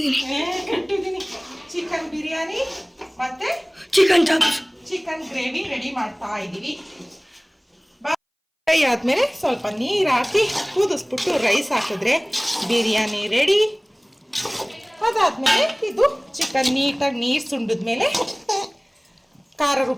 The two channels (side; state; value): both; identical; correlation 1.00